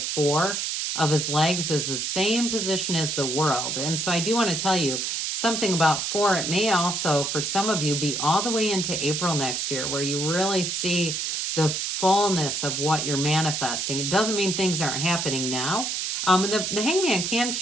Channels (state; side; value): noise; right; hiss, 1 dB below the sound